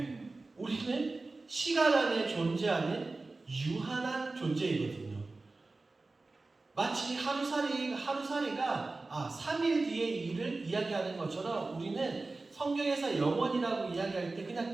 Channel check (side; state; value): left; quieter; 3.4 dB